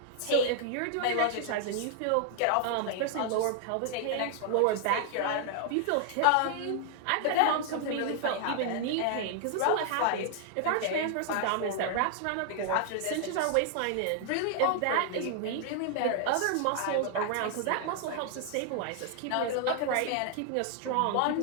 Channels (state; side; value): different; both; correlation 0.00